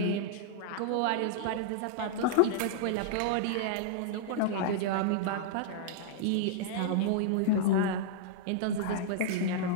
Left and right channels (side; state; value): both; different; correlation -0.02